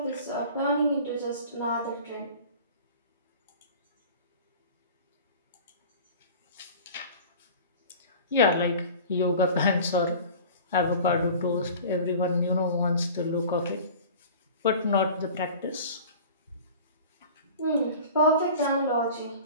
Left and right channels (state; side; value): inverted; both; correlation -0.41